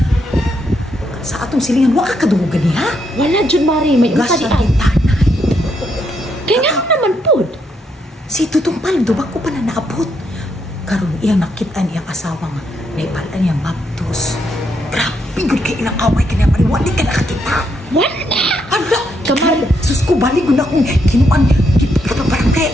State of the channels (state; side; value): normal; both; correlation 0.77